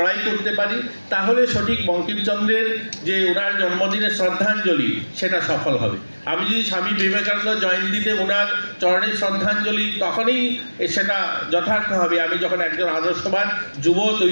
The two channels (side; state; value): both; inverted; correlation -1.00